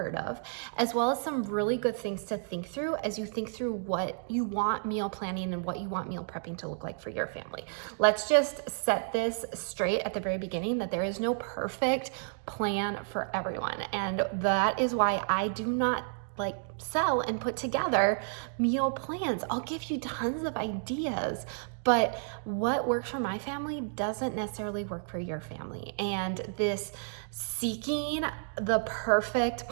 of, as well as some really good things to think through as you think through what you want meal planning and what you want meal prepping to look like for your family. Let's just set this straight at the very beginning that there is no perfect plan for everyone. And that is why I do not sell and put together meal plans. I'll give you tons of ideas, but what works for my family doesn't necessarily work for your family. And this seeking the perfect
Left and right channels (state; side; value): silent; left; digital silence